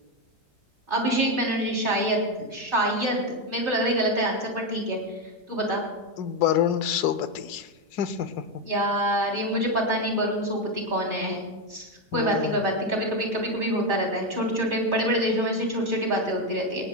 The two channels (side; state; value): both; normal; correlation 0.09